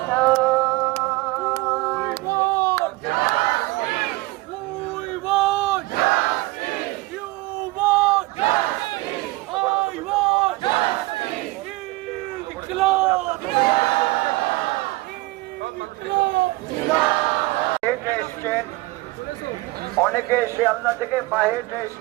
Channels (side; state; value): left; quieter; 21.3 dB